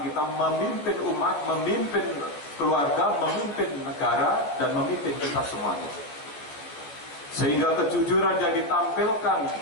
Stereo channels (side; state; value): right; late; 14 ms